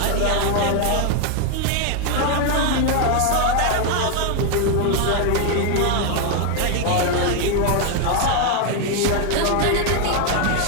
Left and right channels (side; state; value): both; different; correlation 0.01